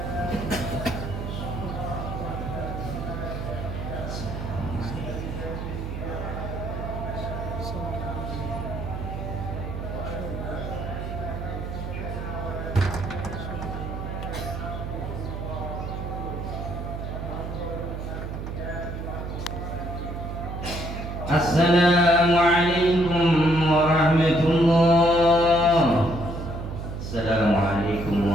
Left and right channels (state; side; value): noise; right; hum, 6 dB below the sound